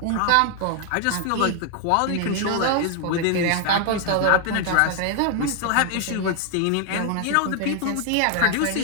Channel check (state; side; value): different; both; correlation 0.00